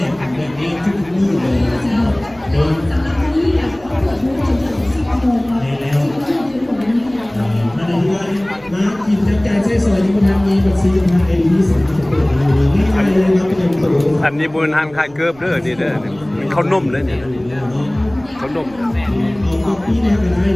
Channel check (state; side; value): noise; right; rumble, 25 dB below the sound